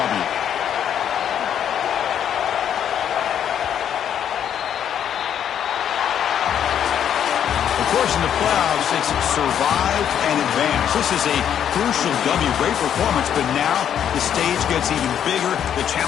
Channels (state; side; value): quieter; right; 9.3 dB